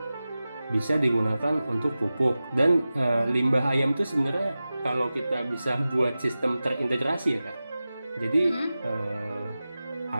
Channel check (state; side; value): inverted; both; correlation -0.95